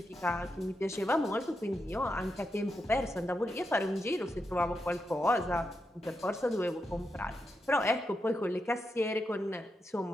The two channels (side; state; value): both; normal; correlation 0.86